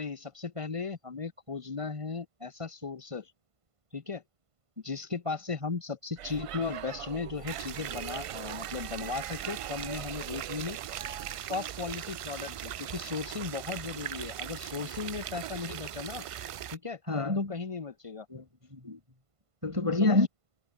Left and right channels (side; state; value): left; late; 1.5 ms